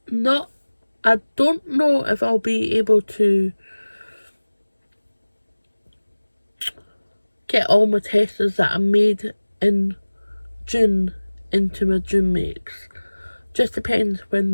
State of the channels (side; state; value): both; inverted; correlation -1.00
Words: I don't know if I'll be able to get all my testers that I made in June into my June makes. Just depends when